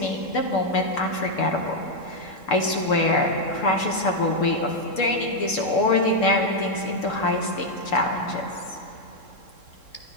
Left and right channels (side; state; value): right; late; 3.7 ms